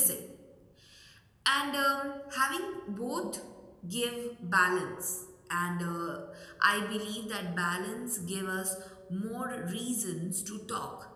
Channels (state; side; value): identical; both; correlation 1.00